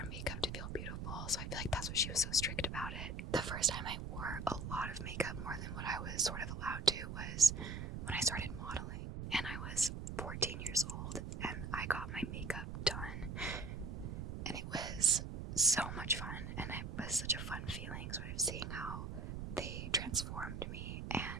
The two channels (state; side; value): noise; right; rumble, 5 dB below the sound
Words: makeup to feel beautiful, so I feel like that's what she was so strict about it. The first time I wore a lot of makeup, more than what I was sort of allowed to, was when I started modeling, and I was 14 years old, and I got my makeup done, and it was so much fun, and it was such a fun feeling, sort of seeing how they transformed me,